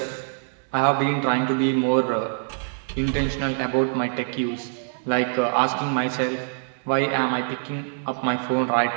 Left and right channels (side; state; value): left; silent; 62 dB below the other